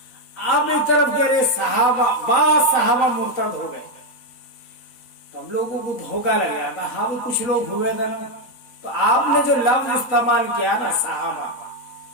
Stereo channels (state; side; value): late; right; 3.9 ms